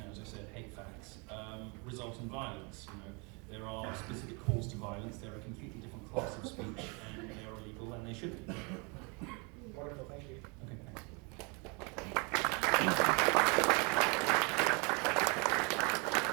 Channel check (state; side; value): quieter; left; 31.7 dB